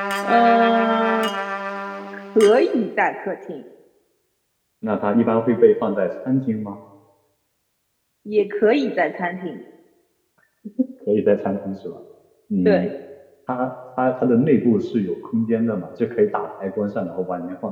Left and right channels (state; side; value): identical; both; correlation 1.00